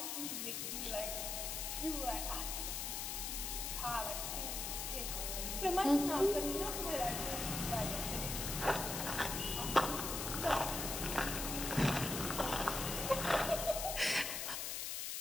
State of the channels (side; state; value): left; noise; hiss, 3 dB below the sound